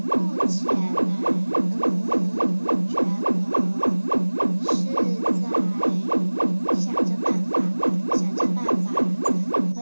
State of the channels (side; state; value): both; inverted; correlation -1.00